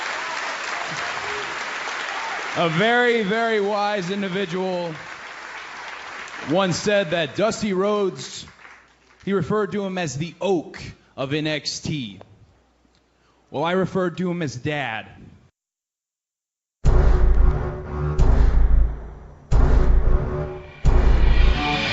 A very, very wise individual once said that Dusty Rhodes, he referred to him as the oak of NXT. Well, I referred to him as Dad.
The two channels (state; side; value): identical; both; correlation 1.00